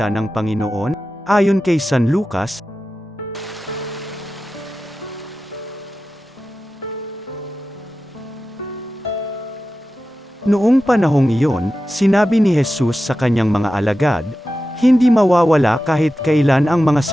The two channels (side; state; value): both; normal; correlation 0.93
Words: ng Panginoon, ayon kay San Lucas. Noong panahong iyon, sinabi ni Jesus sa kanyang mga alagad, "Hindi mawawala kahit kailan ang mga